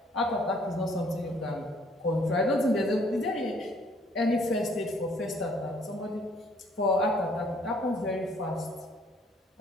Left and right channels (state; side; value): normal; both; correlation 0.62